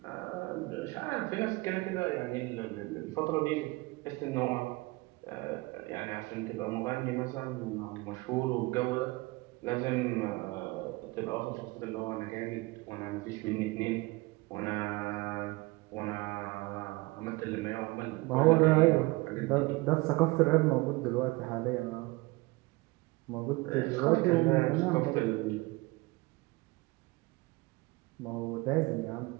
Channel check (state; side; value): quieter; left; 23.2 dB